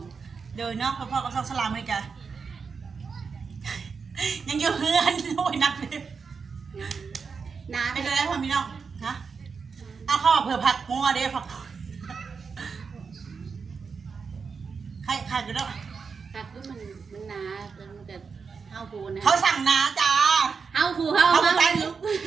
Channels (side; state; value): left; quieter; 5.4 dB